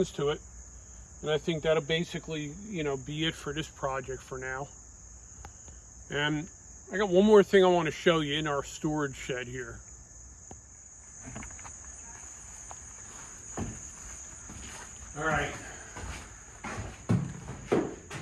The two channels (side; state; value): both; identical; correlation 1.00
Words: to it. And I think that'll basically, you know, be it for this project for now. And I got one more thing I want to show you in our storage shed here. All right.